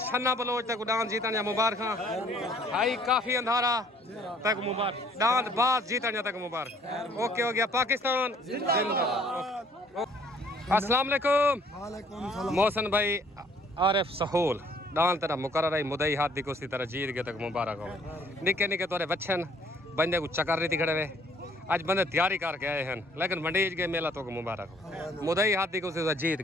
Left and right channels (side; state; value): both; normal; correlation 0.60